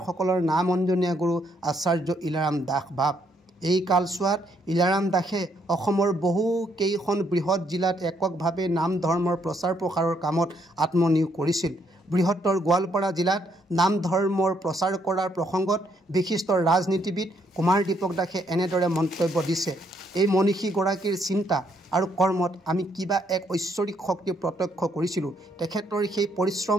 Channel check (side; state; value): both; normal; correlation 0.72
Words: নাম অঞ্জনীয়া গুৰু আচাৰ্য ইলাৰাম দাস বাপ। এই কালছোৱাত ইলাৰাম দাসে অসমৰ বহু কেইখন বৃহৎ জিলাত এককভাৱে নাম ধৰ্মৰ প্ৰচাৰ প্ৰসাৰৰ কামত আত্মনিয়োগ কৰিছিল। বৃহত্তৰ গোৱালপাৰা জিলাত নাম ধৰ্মৰ প্ৰচাৰ কৰাৰ প্ৰসংগত বিশিষ্ট ৰাজনীতিবিদ কুমাৰ দীপক দাসে এনেদৰে মন্তব্য দিছে, এই মনীষীগৰাকীৰ চিন্তা আৰু কৰ্মত আমি কিবা এক ঐশ্বৰিক শক্তি প্ৰত্যক্ষ কৰিছিলোঁ। তেখেতৰ সেই